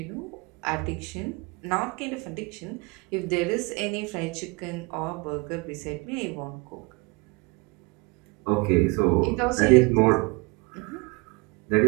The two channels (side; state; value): left; quieter; 27.5 dB